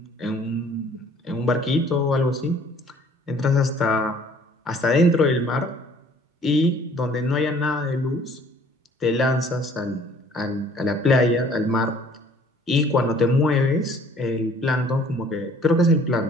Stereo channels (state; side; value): normal; both; correlation 0.55